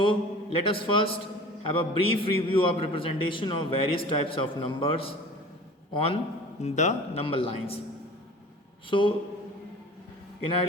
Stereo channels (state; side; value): normal; both; correlation 0.42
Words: let us first have a brief review of representation of various types of numbers on the number lines. So in